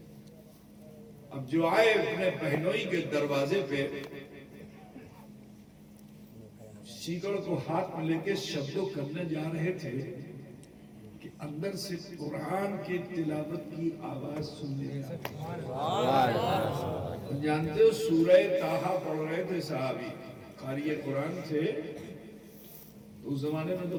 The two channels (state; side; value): identical; both; correlation 1.00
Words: اب جو آئے اپنے بہنوئی کے دروازے پہ سیکڑ کو ہاتھ میں لے کے شبدوں کرنے جا رہے تھے کہ اندر سے قرآن کی تلاوت کی آواز سننے جانتے ہو، سورہ طٰہٰ پڑھ رہے تھے صحابی، قاری قرآن تھے، تو اس زمانے میں تو